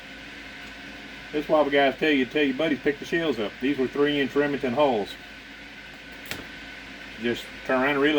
That's why the guys tell your buddies pick the shells up. These were 3-inch Remington hulls. Just turn around and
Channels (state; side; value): identical; both; correlation 1.00